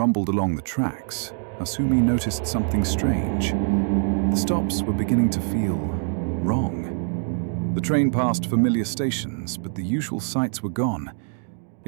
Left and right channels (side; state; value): left; silent; 62 dB below the other